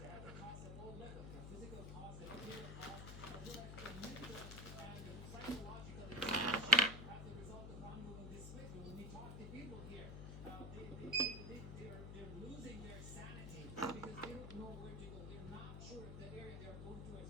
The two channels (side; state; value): left; noise; hum, 8 dB below the sound